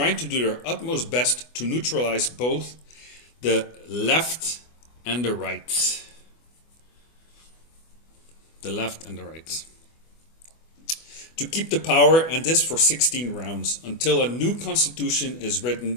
to do their utmost best to neutralize both the left and the right. The left and the right. To keep the power, and this for 16 rounds, until a new constitution is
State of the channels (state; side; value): late; right; 24 ms